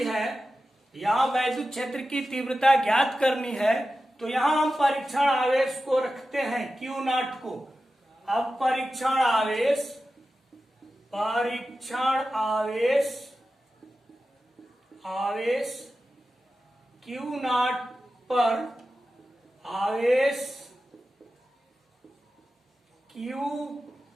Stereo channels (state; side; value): normal; both; correlation 0.93